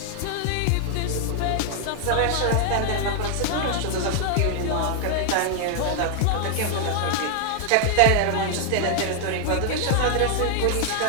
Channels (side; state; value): both; different; correlation 0.00